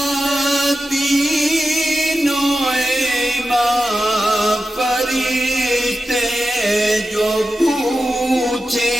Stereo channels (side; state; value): both; normal; correlation 0.92